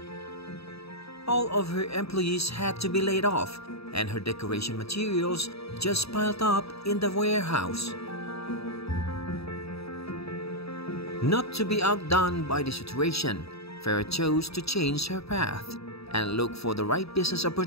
All of her employees had to be laid off, and her decoration materials just piled up in the warehouse. Not to be outdone by the situation, Farah chose to change her path and look for the right business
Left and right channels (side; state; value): right; late; 0.77 ms